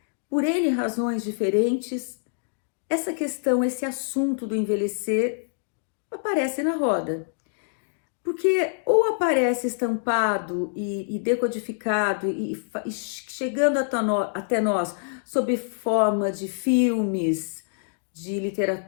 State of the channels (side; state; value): right; silent; digital silence